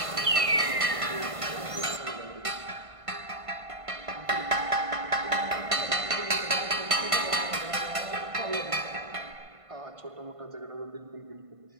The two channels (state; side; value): late; left; 1.5 ms